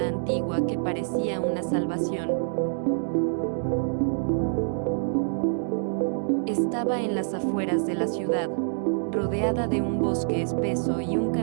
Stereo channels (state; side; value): silent; left; digital silence